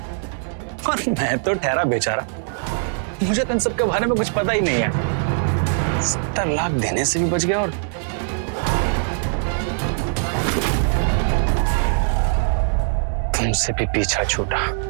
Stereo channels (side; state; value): left; silent; digital silence